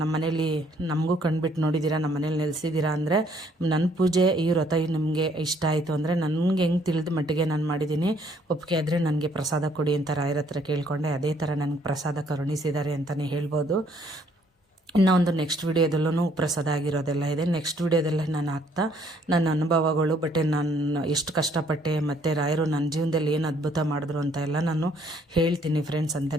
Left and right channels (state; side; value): normal; both; correlation 0.64